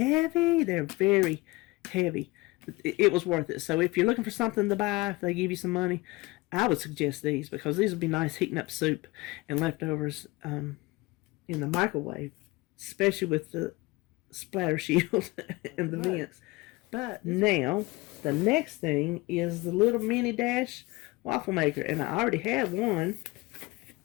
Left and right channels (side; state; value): right; quieter; 22.6 dB